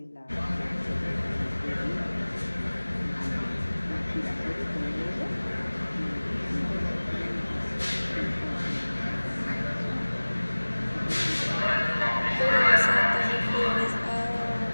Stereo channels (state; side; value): inverted; both; correlation -1.00